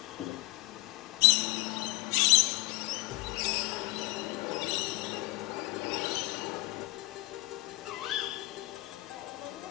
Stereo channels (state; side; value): quieter; right; 23.1 dB